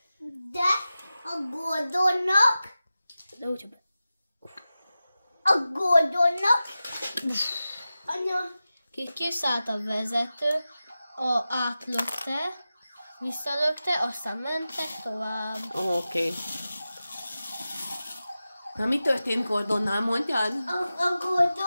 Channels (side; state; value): both; inverted; correlation -0.94